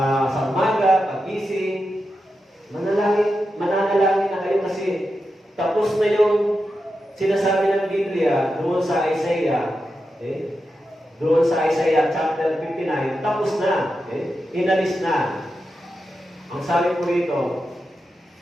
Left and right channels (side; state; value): both; normal; correlation 0.89